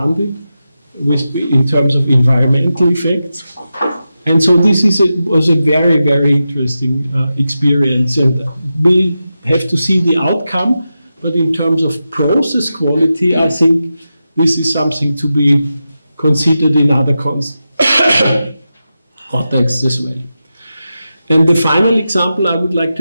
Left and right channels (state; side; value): inverted; both; correlation -0.91